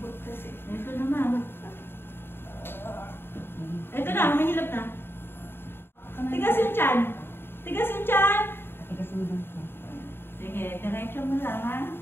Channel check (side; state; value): right; late; 0.11 ms